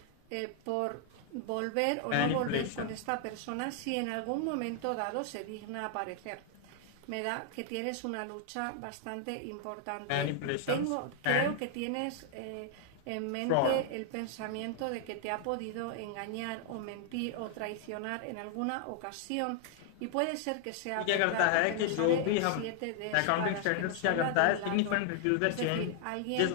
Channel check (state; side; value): different; both; correlation 0.00